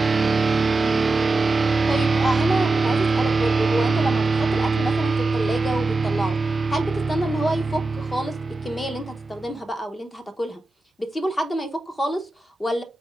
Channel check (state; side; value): quieter; left; 3.1 dB